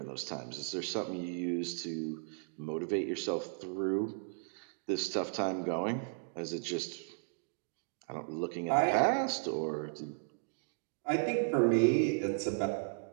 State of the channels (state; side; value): silent; left; digital silence